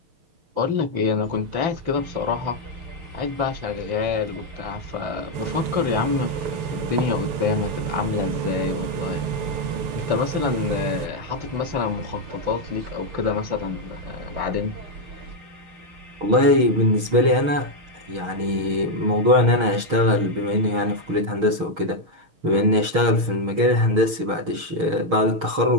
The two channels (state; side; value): late; left; 6.4 ms